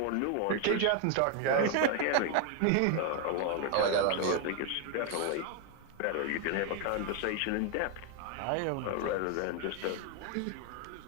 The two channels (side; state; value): both; different; correlation 0.01